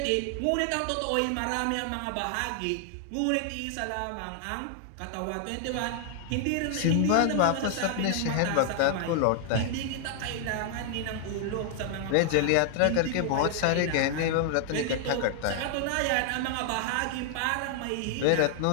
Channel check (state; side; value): different; both; correlation 0.00